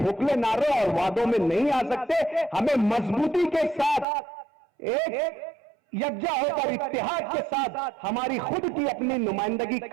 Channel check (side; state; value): left; drops out; at 4.0 s